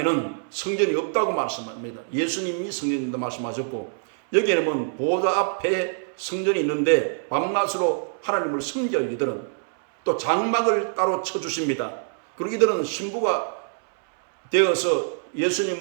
성전이 없다고 말씀합니다. 예수님이 성전이라고 말씀하셨고 여기에는 보좌 앞에 성전이 있는데 밤낮으로 하나님을 섬겨 이들은 또 장막을 따로 쳐주십니다. 그리고 이들은 신부가 되어서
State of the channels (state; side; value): silent; left; 62 dB below the other